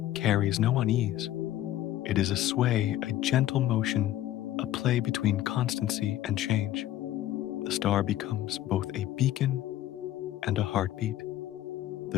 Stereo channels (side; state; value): right; quieter; 13.4 dB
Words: carries no unease. It is a sway, a gentle motion, a play between constancy and change. The star becomes both a beacon and a heartbeat. The